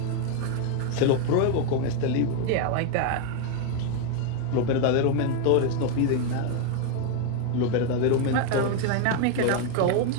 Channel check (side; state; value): both; different; correlation 0.01